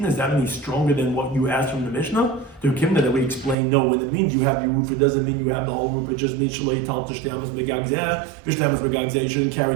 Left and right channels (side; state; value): left; drops out; at 3.6 s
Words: that any stronger than what you asked from the Mishnah? The Kimna that we explain, no, when it means you have your roof, it doesn't mean you have the whole roof. It just means Shalei Tal Tishte Amas Begag Zeh, Tishte Amas Begag Zeh. You shouldn't carry